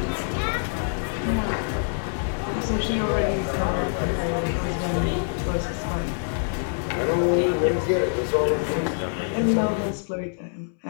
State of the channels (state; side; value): silent; right; digital silence